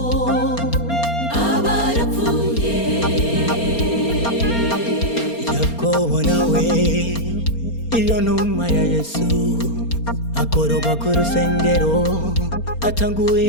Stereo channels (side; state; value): right; late; 4.3 ms